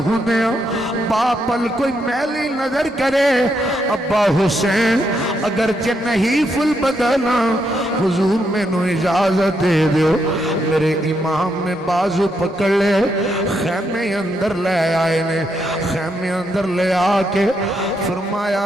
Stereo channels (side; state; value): both; normal; correlation 0.79